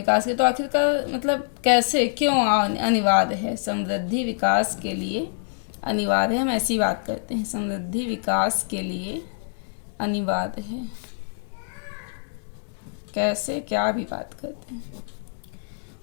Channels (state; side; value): silent; right; digital silence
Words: के, तो आखिरकार मतलब कैसे, क्यों अनिवार्य है, समृद्धि विकास के लिए अनिवार्य है। हम ऐसी बात करते हैं, समृद्धि विकास के लिए अनिवार्य है, कैसे, क्या भी बात करते हैं।